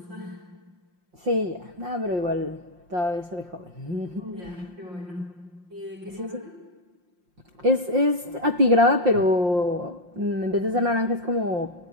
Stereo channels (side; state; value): left; late; 5.7 ms